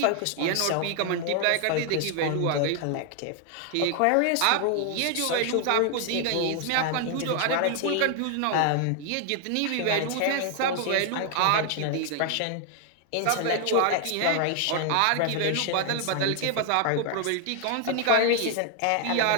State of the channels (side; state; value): both; different; correlation 0.00